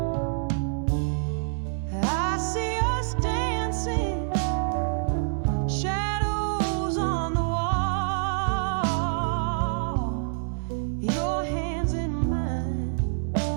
I see us dancing, shadows on the wall, your hands in mine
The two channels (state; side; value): silent; left; digital silence